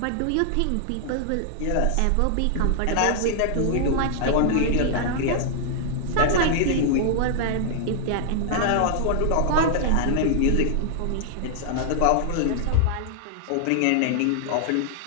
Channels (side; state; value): both; different; correlation -0.01